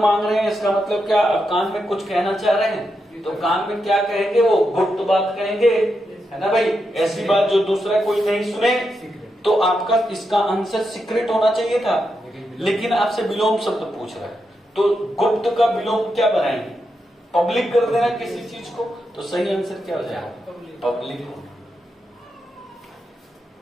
रहे हैं, इसका मतलब क्या? अब कान में कुछ कहना चाह रहे हैं तो कान में क्या कहेंगे? वो गुप्त बात कहेंगे, है ना भाई? ऐसी बात जो दूसरा कोई नहीं सुने। तो आपका इसका आंसर सीक्रेट होना चाहिए था, लेकिन आपसे विलोम शब्द पूछ रहा है। तो गुप्त का विलोम क्या बनाएंगे? पब्लिक कर देना किसी चीज को। तो सही आंसर क्या हो जाएगा? पब्लिक होना।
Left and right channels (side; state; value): both; normal; correlation 0.85